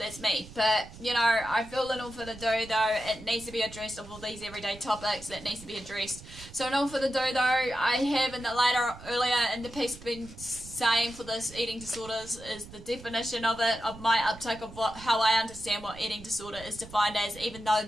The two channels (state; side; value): noise; right; rumble, 17 dB below the sound